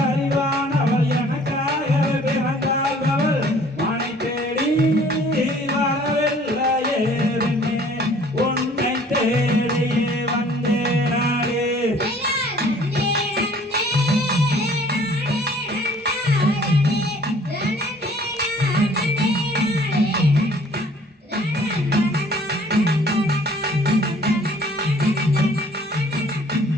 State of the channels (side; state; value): both; normal; correlation 0.54